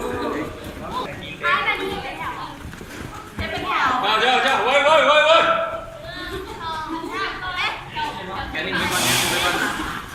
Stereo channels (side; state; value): both; identical; correlation 1.00